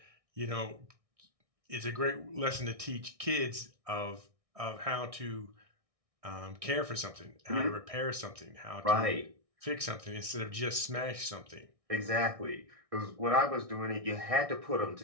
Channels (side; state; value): left; late; 1.6 ms